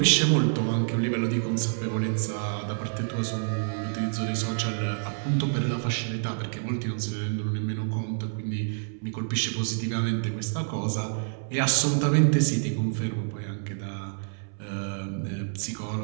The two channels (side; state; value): left; silent; 60 dB below the other